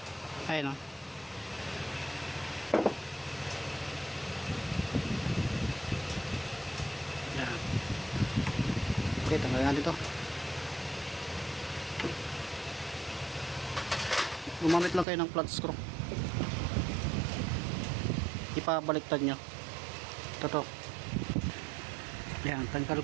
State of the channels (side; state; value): left; drops out; at 15.1 s